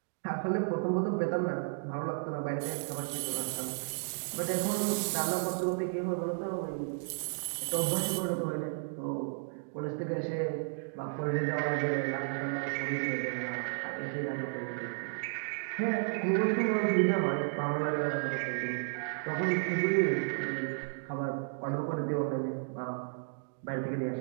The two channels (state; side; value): silent; left; digital silence